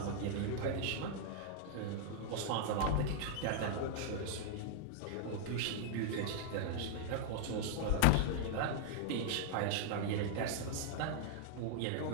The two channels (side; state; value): both; different; correlation -0.01